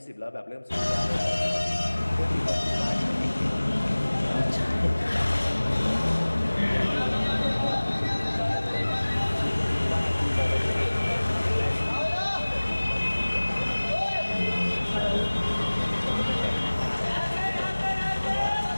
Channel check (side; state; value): both; inverted; correlation -1.00